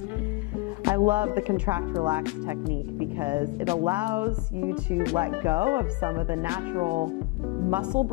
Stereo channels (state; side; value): quieter; right; 22.7 dB